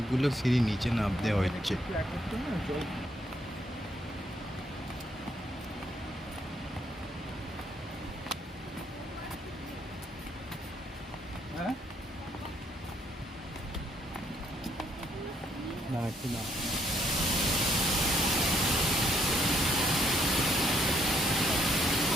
সিঁড়ি নিচে নামতে হচ্ছে।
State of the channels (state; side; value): normal; both; correlation 0.70